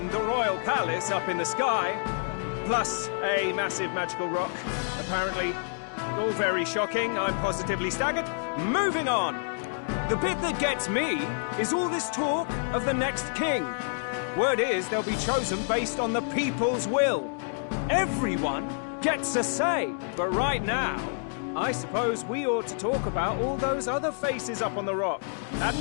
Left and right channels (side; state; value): right; silent; digital silence